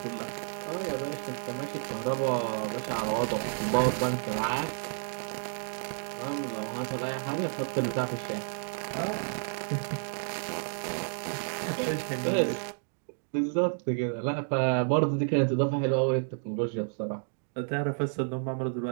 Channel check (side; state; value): left; silent; digital silence